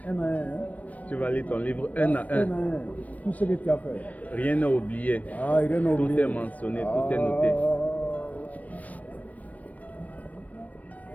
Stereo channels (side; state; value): right; late; 0.071 ms